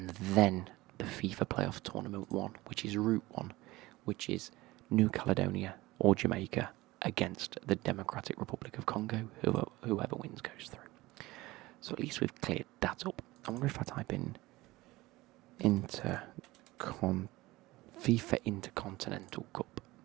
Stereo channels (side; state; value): left; quieter; 19.5 dB